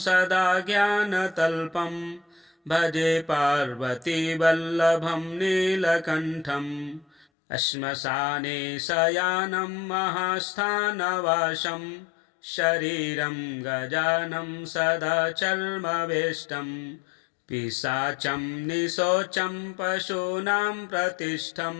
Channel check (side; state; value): right; drops out; at 7.2 s